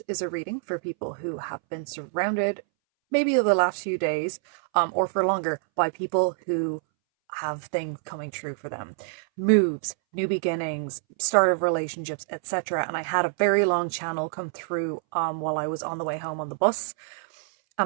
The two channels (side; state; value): left; silent; 60 dB below the other